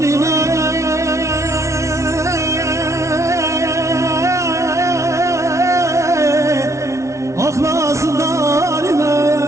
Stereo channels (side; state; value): left; late; 0.14 ms